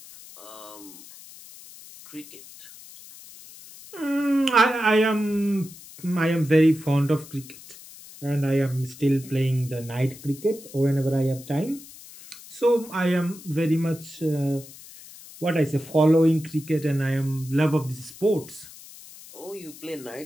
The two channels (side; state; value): left; noise; hiss, 18 dB below the sound